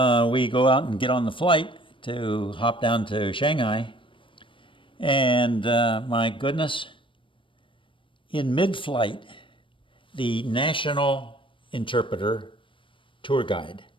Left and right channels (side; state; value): right; late; 0.25 ms